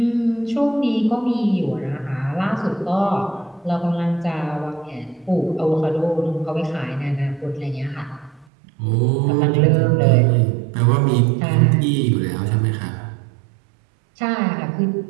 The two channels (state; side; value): drops out; left; at 8.5 s